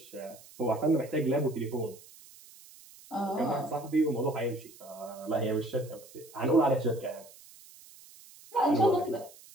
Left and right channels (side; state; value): right; noise; hiss, 21 dB below the sound